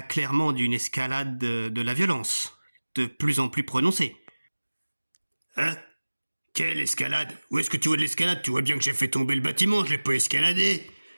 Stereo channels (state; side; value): inverted; both; correlation -1.00